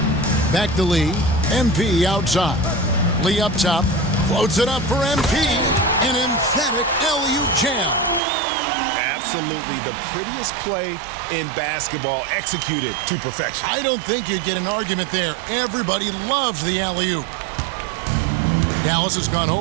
Back to Lee. MP outside. Lee up top. Floats it up for MP. An emphatic alley-oop jam. Absolutely the prettiest play in basketball, executed to perfection. I don't think you'd get an argument there. Everybody loves the alley-oop. Dallas has gone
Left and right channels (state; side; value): drops out; left; at 8.2 s